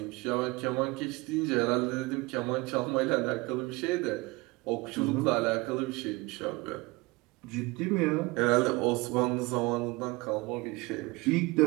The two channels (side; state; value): left; quieter; 23.8 dB